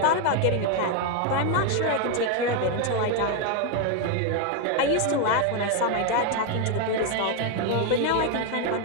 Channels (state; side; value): different; both; correlation 0.01